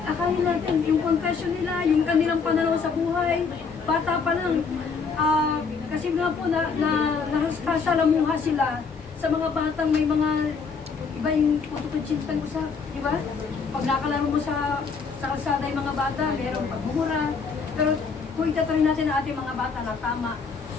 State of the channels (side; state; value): right; quieter; 5.2 dB